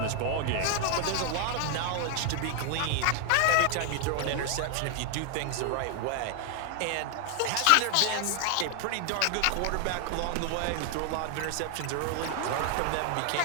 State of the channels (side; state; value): both; different; correlation 0.00